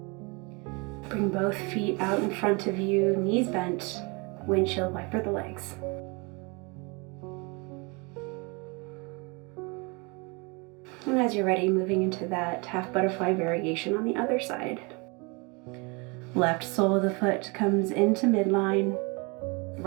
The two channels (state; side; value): quieter; left; 29.6 dB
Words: Bring both feet out in front of you, knees bent, windshield wiper the legs. And as you're ready, moving into that half butterfly variation on the other side. Left sole of the foot comes into midline,